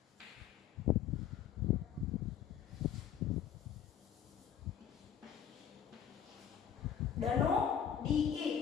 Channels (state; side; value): quieter; right; 8.9 dB